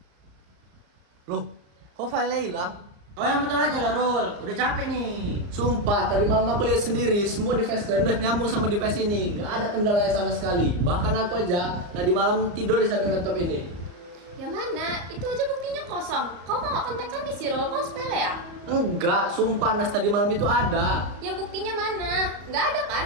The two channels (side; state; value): left; late; 34 ms